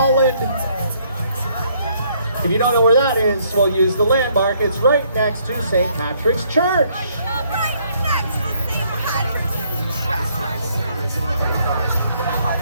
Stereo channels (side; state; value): both; inverted; correlation -0.67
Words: If you don't know where that is, we'll use the landmark. It's right next to St. Patrick's Church.